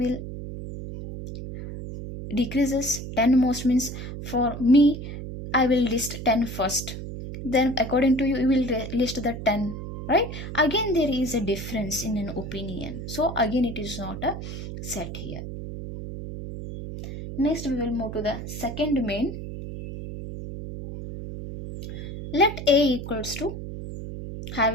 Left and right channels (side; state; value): right; noise; hum, 8 dB below the sound